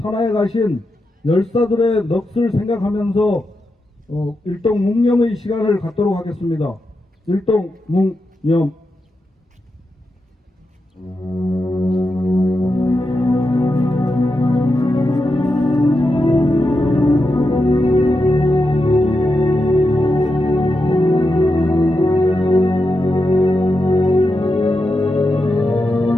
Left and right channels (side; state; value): both; normal; correlation 0.87